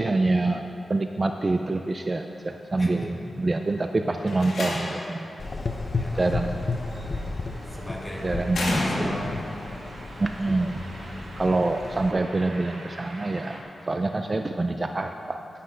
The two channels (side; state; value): both; normal; correlation 0.95